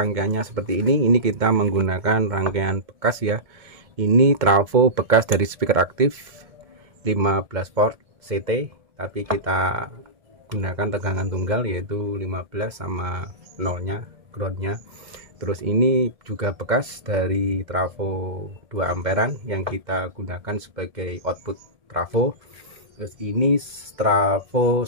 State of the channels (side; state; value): left; late; 1.7 ms